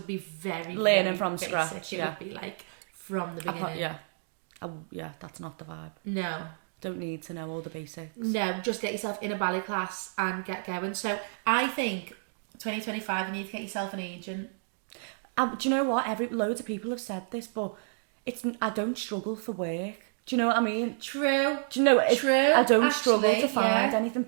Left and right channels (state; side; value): silent; left; digital silence